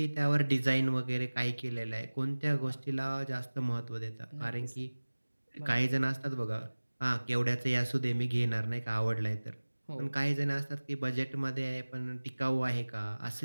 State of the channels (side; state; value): both; inverted; correlation -1.00